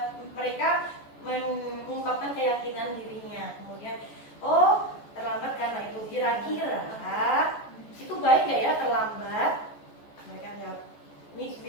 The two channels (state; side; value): late; right; 14 ms